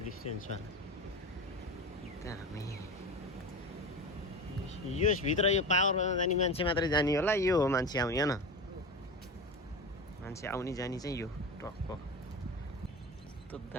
डिस्टेन्समा त्यहाँ हामी यसभित्र यो पावरमा जाने मान्छे मात्रै जाने होला यो हो मान्छे आउने होइन मान्छे आउने जाने चाहिँ यो टक्क कस्तो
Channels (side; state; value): both; normal; correlation 0.26